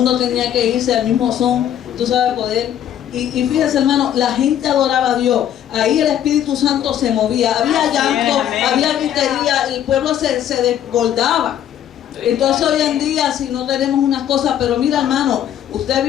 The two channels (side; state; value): right; quieter; 10.5 dB